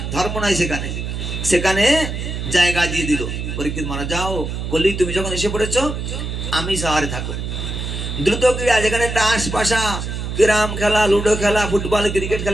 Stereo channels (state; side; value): noise; right; hum, 5 dB below the sound